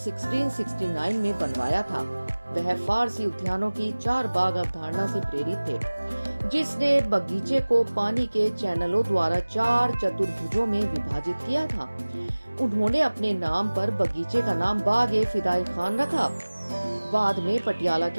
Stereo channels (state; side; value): inverted; both; correlation -1.00